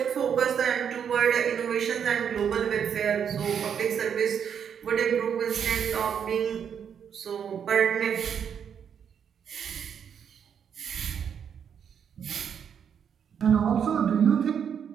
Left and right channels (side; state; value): left; quieter; 7.8 dB